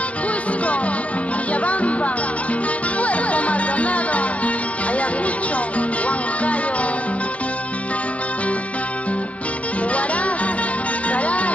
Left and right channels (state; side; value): late; right; 0.064 ms